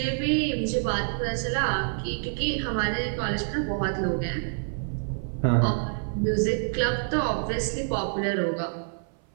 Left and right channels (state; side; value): silent; left; 56 dB below the other